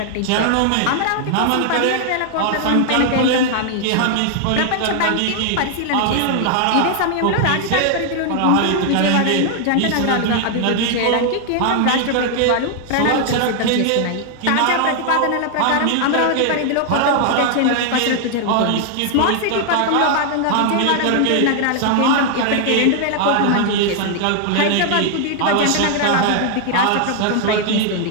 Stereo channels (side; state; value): both; different; correlation 0.00